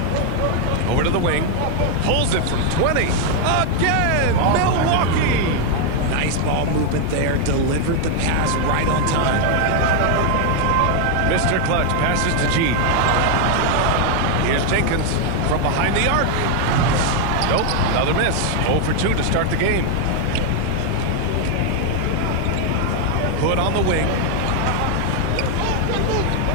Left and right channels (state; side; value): different; both; correlation 0.01